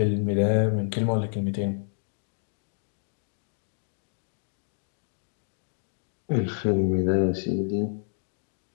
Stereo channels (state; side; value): silent; right; digital silence